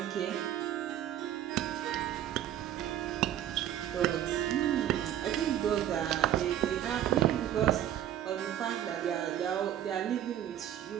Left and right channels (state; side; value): quieter; left; 11.3 dB